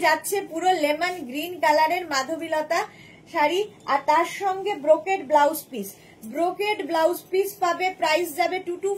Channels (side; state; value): both; identical; correlation 1.00